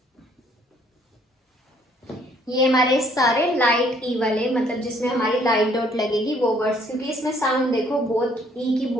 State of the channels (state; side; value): normal; both; correlation 0.63